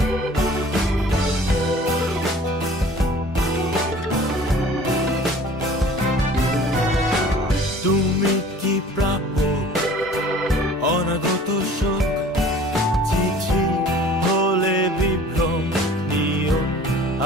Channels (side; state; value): both; normal; correlation 0.48